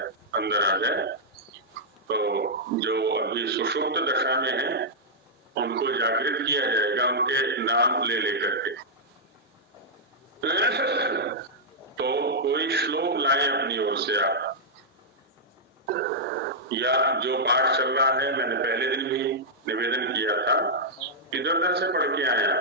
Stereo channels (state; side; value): normal; both; correlation -0.08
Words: अंदर आ जाए। तो जो अभी सुषुप्त दशा में है उनको जागृत किया जाएगा, उनके नाम ले लेकर के। तो कोई श्लोक लाएं अपनी ओर से आप, या जो पाठ चल रहा है, मैंने पहले दिन भी निवेदन किया था, इधर उधर से पढ़ के आए,